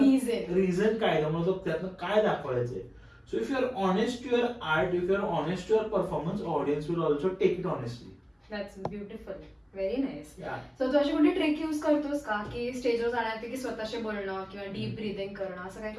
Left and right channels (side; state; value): both; identical; correlation 1.00